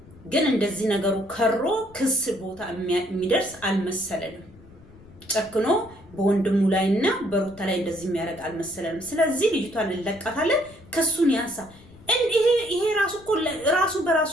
ግን እንደዚህ ነገሩ ከሮ ክስ ቦታ የሚደርስ አልመሰለንም። ጨክኖ በወንድሙ ላይና በሩታ ላይ እንደዚህ የሚያደርግ አልመሰለንም። ስለዚህ ልጅቷን እንለቃታለን፣ ክሱን ያንሳ። ይሄ ራሱ እኮ ራሱ በራሱ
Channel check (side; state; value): left; noise; rumble, 23 dB below the sound